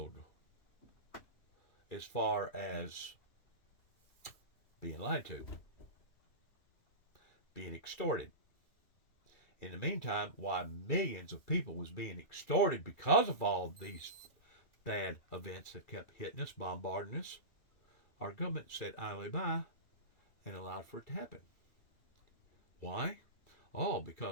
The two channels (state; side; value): late; right; 2.8 ms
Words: as far as being lied to, being extorted. In the meantime, while millions of people was being extorted because of all these bad events that kept hitting us, bombarding us, our government said idly by and allowed for it to happen. Why? Oh,